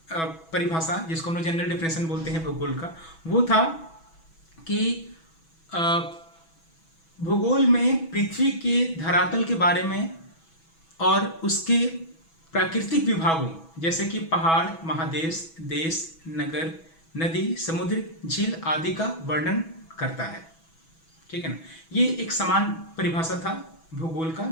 परिभाषा जिसको हम लोग जनरल डेफिनेशन बोलते हैं भूगोल का। वो था कि भूगोल में पृथ्वी के धरातल के बारे में और उसके प्राकृतिक विभागों जैसे कि पहाड़, महादेश, देश, नगर, नदी, समुद्र, झील आदि का वर्णन करता है। ठीक है ना। ये एक समान परिभाषा था भूगोल का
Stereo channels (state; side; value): late; right; 6.1 ms